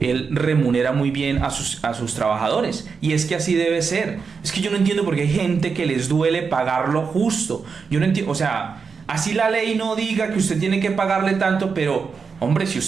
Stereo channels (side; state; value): left; quieter; 5.4 dB